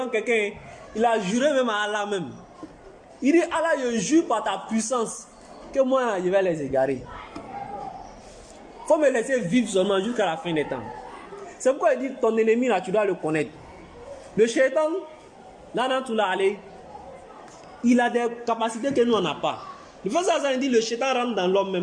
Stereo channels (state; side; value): identical; both; correlation 1.00